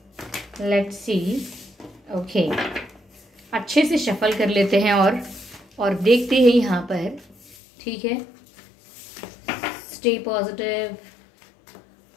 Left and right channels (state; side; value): drops out; right; at 7.6 s